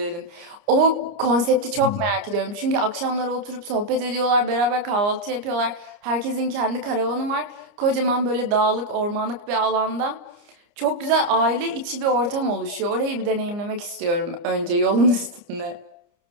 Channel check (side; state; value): left; late; 29 ms